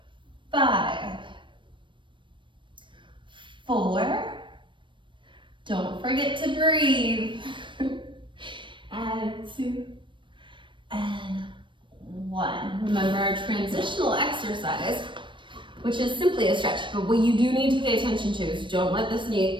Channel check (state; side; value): late; left; 0.24 ms